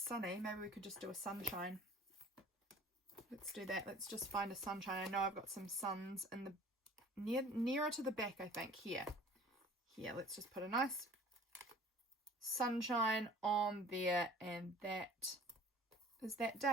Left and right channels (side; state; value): both; normal; correlation 0.48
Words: Maybe we could just do a sunshine. Let's do that. Let's just find a sunshine. I know I've got some suns in the nearer to the back, I think. Here, let's just put a nice sunshine on there, and that is that